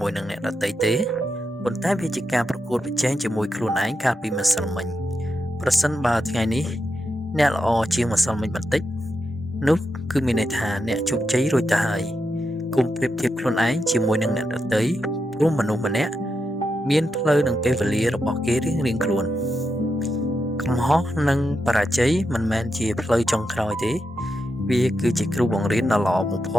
ួយនឹងអ្នកដទៃទេប៉ុន្តែវាជាការប្រកួតប្រជែងជាមួយខ្លួនឯងកាលពីម្សិលមិញប្រសិនបើថ្ងៃនេះអ្នកល្អជាងម្សិលមិញបន្តិចនោះគឺមានន័យថាអ្នកជោគជ័យរួចទៅហើយកុំប្រៀបធៀបខ្លួនឯងជាមួយនឹងអ្នកដទៃព្រោះមនុស្សម្នាក់មានផ្លូវនិងពេលវេលារបស់គេរៀងៗខ្លួនកំហុសនិងបរាជ័យមិនមែនជាផ្លូវចុងក្រោយទេវាគឺជាគ្រូបង្រៀនដ៏ល្អបំផ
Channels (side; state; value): both; normal; correlation 0.86